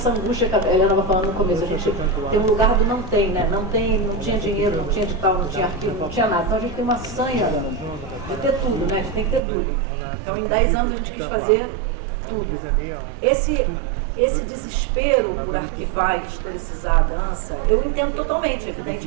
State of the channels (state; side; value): drops out; left; at 9.4 s